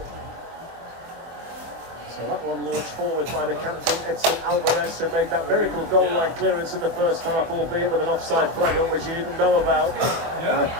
So that one launched forward by the captain, Edson Alvarez, who made that miracle goal line clearance in the first half, albeit with an offside flag on, which you didn't know about.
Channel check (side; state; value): left; late; 24 ms